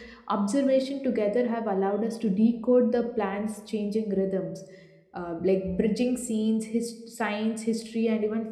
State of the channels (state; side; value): identical; both; correlation 1.00